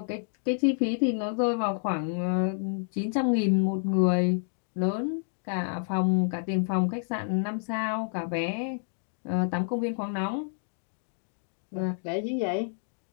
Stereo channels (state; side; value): silent; right; digital silence